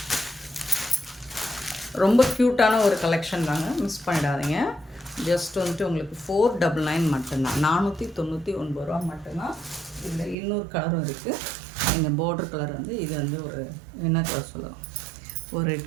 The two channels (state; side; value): drops out; left; at 10.4 s